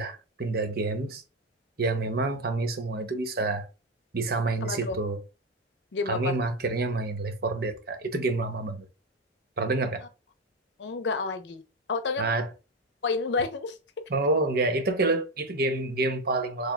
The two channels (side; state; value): both; normal; correlation 0.12